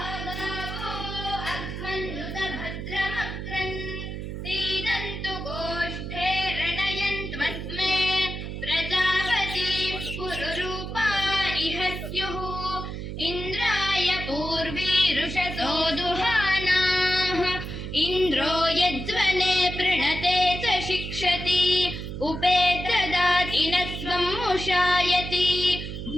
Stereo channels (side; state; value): right; noise; hum, 7 dB below the sound